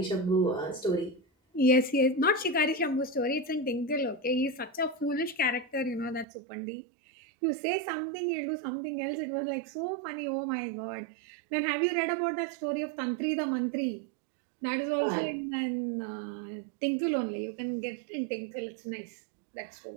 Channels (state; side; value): drops out; left; at 6.2 s